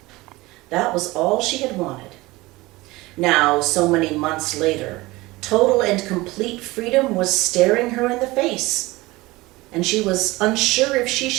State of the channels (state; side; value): quieter; left; 20.8 dB